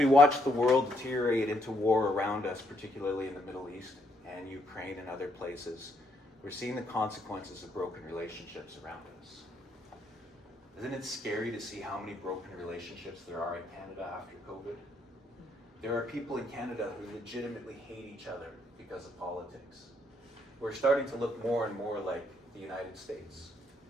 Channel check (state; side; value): normal; both; correlation 0.74